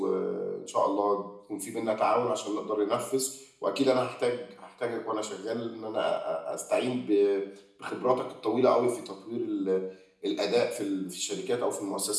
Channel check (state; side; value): identical; both; correlation 1.00